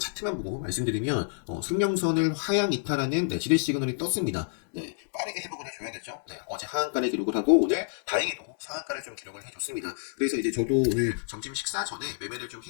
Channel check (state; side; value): silent; right; digital silence